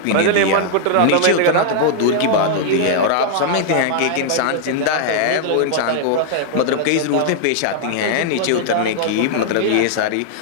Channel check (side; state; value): both; different; correlation -0.01